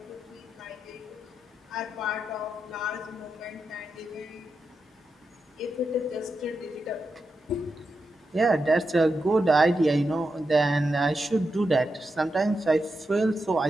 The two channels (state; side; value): normal; both; correlation 0.87